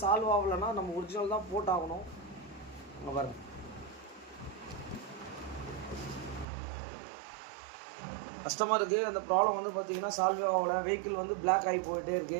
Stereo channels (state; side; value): drops out; left; at 6.5 s